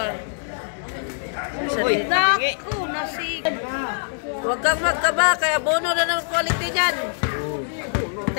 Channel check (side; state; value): right; silent; digital silence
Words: Uy, Naku, nasig. Huwag kang magkaba, kaya bono na ng quality niyan.